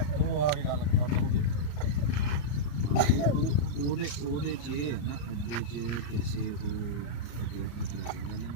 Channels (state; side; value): late; right; 34 ms